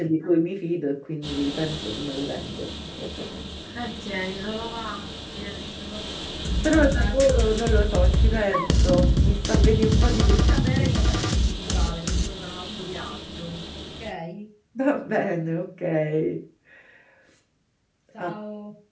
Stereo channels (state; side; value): identical; both; correlation 1.00